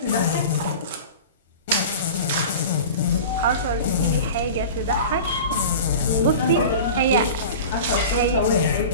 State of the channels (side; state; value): both; inverted; correlation -0.34